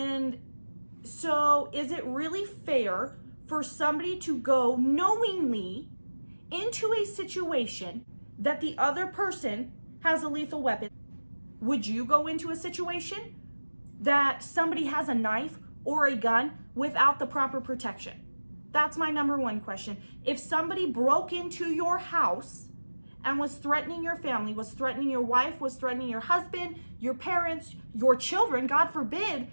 so is it really fair for somebody to go knowingly into a situation that the other person has a lethal weapon? Would you go into a situation that somebody has a knife or a gun without the proper protection? That's my number one question. If somebody broke into your house and was threatening your family, was threatening your wife, was threatening your husband, your parents, your children, God forbid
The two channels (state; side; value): inverted; both; correlation -1.00